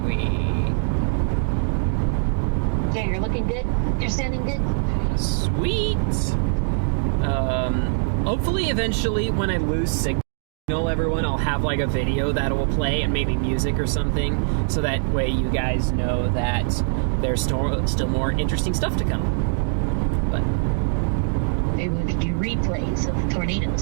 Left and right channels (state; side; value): silent; left; digital silence